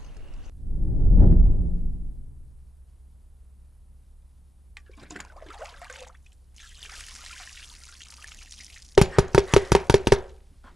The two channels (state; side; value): normal; both; correlation 0.85